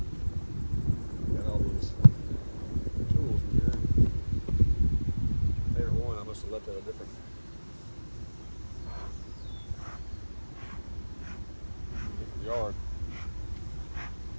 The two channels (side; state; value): both; inverted; correlation -1.00